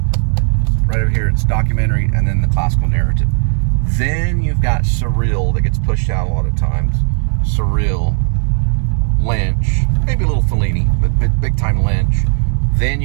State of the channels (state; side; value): silent; left; 63 dB below the other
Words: right over here. It's documentary and then the classical narrative. Then you've got surreal that gets pushed out a lot of times. Surreal, Lynch, maybe a little Fellini, but big time Lynch. Then